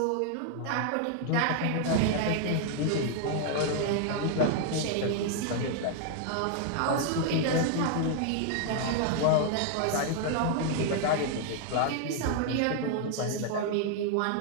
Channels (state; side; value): different; both; correlation 0.00